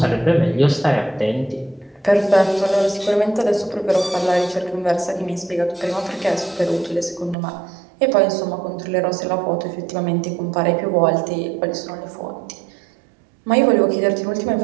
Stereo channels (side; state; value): left; drops out; at 7.4 s